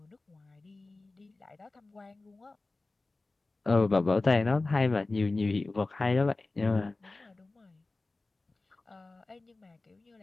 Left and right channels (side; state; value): right; quieter; 3.3 dB